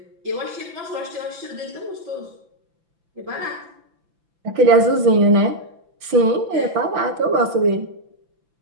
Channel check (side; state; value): left; late; 5.9 ms